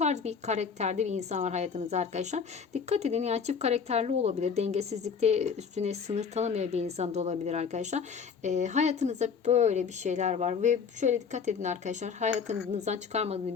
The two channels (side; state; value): right; quieter; 6.2 dB